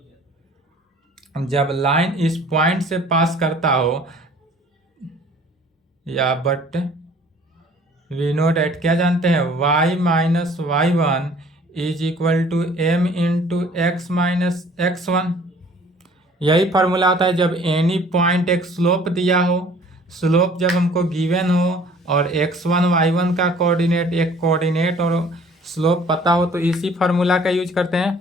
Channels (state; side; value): normal; both; correlation 0.53